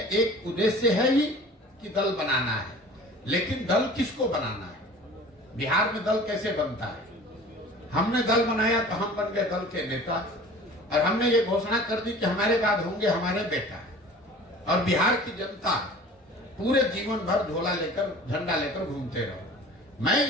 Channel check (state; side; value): normal; both; correlation 0.44